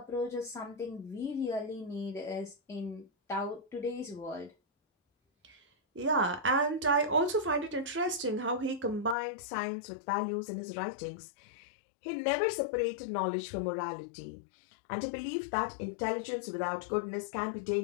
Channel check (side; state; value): right; drops out; at 9.2 s